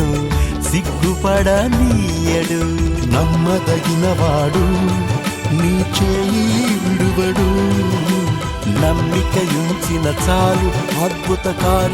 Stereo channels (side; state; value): both; identical; correlation 1.00